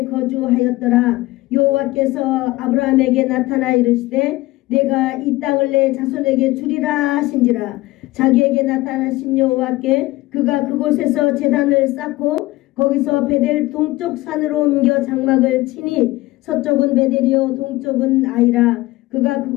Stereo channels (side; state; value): right; quieter; 19.2 dB